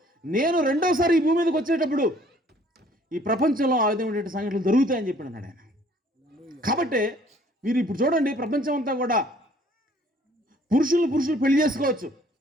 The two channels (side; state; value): both; normal; correlation 0.58